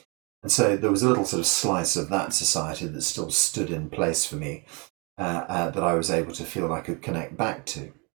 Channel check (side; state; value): left; quieter; 30.7 dB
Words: And so there was a little sort of slice of that society that still stood in place for me, that I was able to feel I could connect back to.